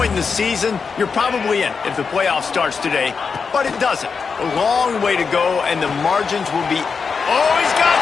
in the season, you're probably in if the playoff starts today, but it doesn't. A long way to go, and the margins will be... Oh, he's got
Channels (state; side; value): quieter; right; 5.4 dB